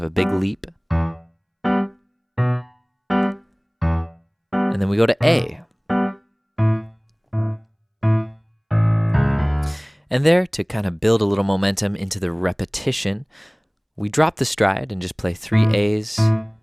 a big leap. And then we go to A. And there, to kind of build a little momentum into the repetition, we drop the stride and just play 3 A's,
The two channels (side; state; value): both; identical; correlation 1.00